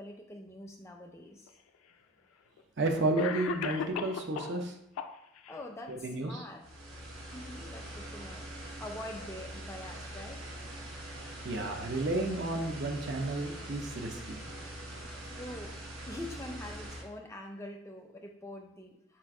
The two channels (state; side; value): normal; both; correlation 0.39